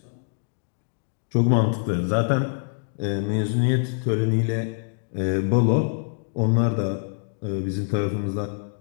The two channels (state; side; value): silent; right; 62 dB below the other